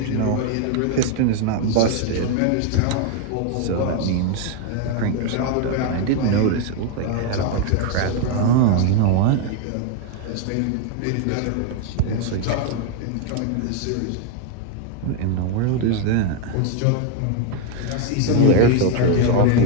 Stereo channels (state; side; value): different; both; correlation 0.01